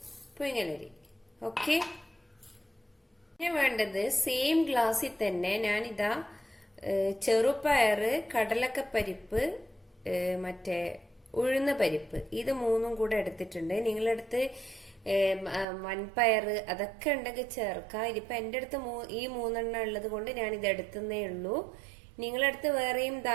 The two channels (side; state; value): left; drops out; at 15.7 s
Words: പുഴുങ്ങലരി. ഓക്കെ, പിന്നെ വേണ്ടത് സെയിം ഗ്ലാസ്സിൽ തന്നെ ഞാനിതാ ചെറുപയർ, കടലക്കപ്പരിപ്പ്, മറ്റേ ഉഴുന്ന പരിപ്പ്, ഇത് മൂന്നും കൂടെ എടുത്തിട്ടുണ്ട്. നിങ്ങളടുത്ത് വൻപയർ അതൊക്കെ ഉണ്ടെങ്കിൽ ചേർക്കാം. ഇതിപ്പോ എന്റെ അടുത്ത് ഈ 3 ഉള്ളത് കൊണ്ട് ഞാൻ ഇത് എടുത്തേ ഉള്ളൂ. നിങ്ങളടുത്ത് വേറെയും